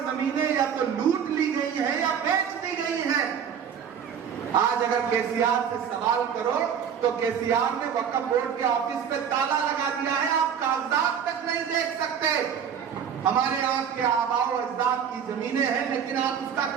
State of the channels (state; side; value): quieter; left; 7.8 dB